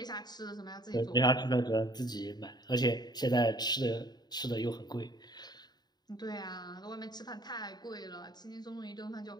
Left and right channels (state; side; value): late; right; 0.20 ms